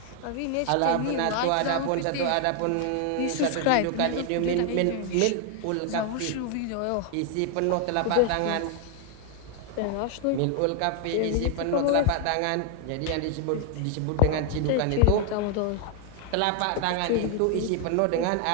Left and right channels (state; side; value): different; both; correlation 0.00